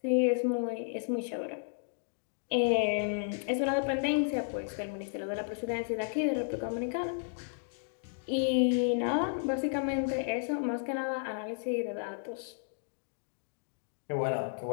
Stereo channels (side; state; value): right; silent; digital silence